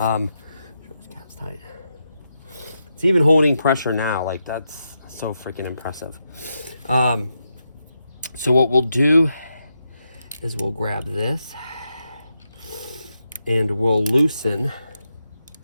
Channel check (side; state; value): both; inverted; correlation -0.85